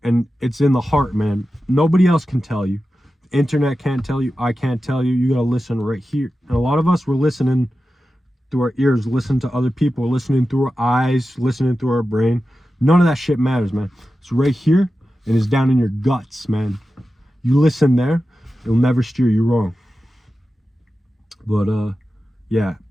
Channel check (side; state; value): both; normal; correlation 0.93